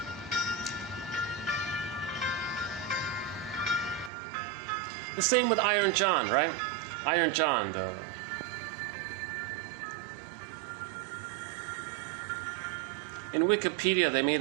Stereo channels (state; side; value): drops out; left; at 4.1 s